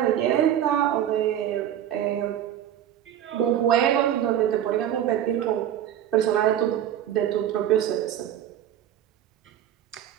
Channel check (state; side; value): quieter; left; 10.8 dB